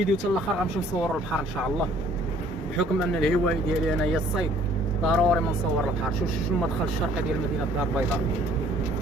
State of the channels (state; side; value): normal; both; correlation 0.57